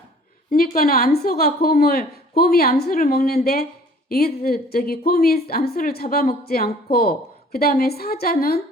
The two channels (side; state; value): both; normal; correlation 0.52